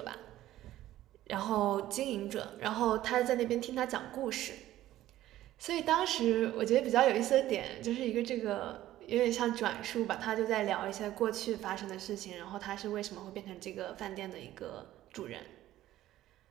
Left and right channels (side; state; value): left; quieter; 14.2 dB